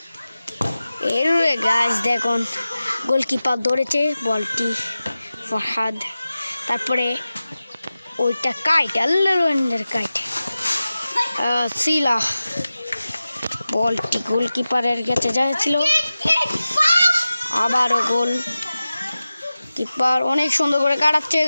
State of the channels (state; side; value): inverted; both; correlation -0.95